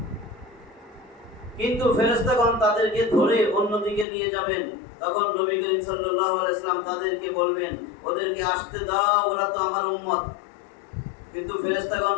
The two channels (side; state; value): right; drops out; at 4.0 s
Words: কিন্তু ফেরেশতাগণ তাদেরকে ধরে অন্যদিকে নিয়ে যাবেন। তখন নবী করিম সাল্লাল্লাহু আলাইহি সাল্লাম তাদেরকে বলবেন, ওদেরকে আসতে দাও, ওরা তো আমার উম্মত। কিন্তু ফেরেশতাগণ